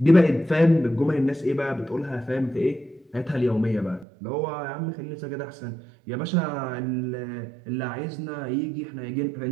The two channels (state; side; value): drops out; left; at 4.0 s